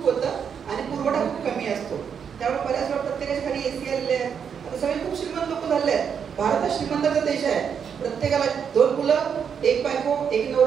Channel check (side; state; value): left; quieter; 7.3 dB